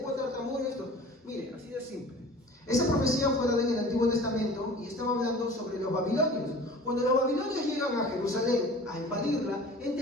tartamuda esto. Mire, así de simple. Esa profecía fue dada en el Antiguo Testamento y estaba hablando sobre los babilonios. Cuando los babilonios llegan a Jerusalén a invadirla,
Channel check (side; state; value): both; normal; correlation 0.43